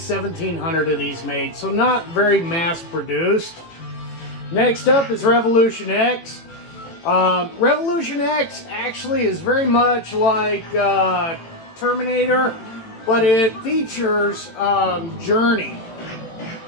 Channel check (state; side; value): late; right; 18 ms